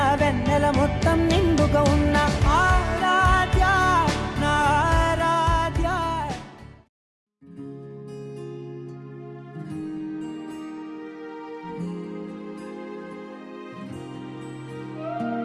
వెన్నెల మొత్తం నిండుగా ఉన్న ఆరాధ్య నా ఆరాధ్య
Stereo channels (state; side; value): identical; both; correlation 1.00